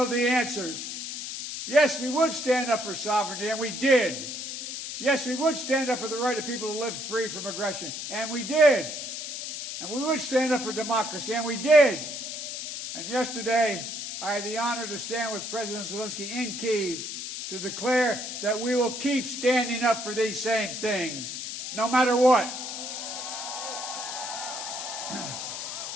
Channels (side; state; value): left; noise; hiss, 6 dB below the sound